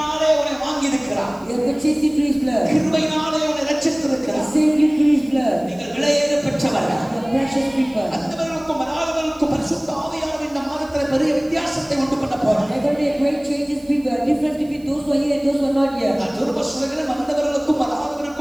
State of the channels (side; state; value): right; noise; hiss, 28 dB below the sound